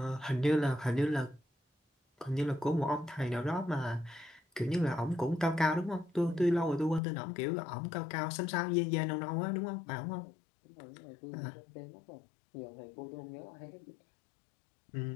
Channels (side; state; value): right; drops out; at 7.0 s